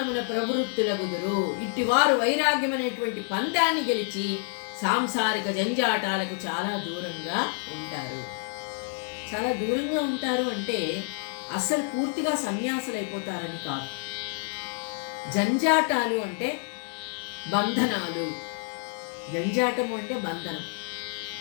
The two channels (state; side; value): silent; right; 57 dB below the other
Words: ప్రవృత్తులగుదురు. ఇట్టివారు వైరాగ్యమనేటువంటి పందాన్ని గెలిచి సాంసారిక జంజాటాలకు చాలా దూరంగా ఉంటారు. చాలా దూరంగా ఉంటారు అంటే అసలు పూర్తిగా సన్యాసులైపోతారని కాదు. జంజాటాలు అంటే బంధనాలు, జంజాటము అంటే బంధనం.